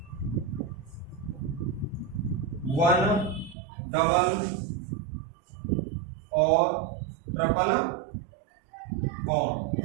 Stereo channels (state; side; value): drops out; left; at 3.6 s